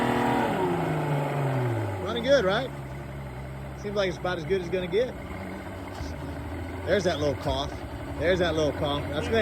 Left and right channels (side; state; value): both; identical; correlation 1.00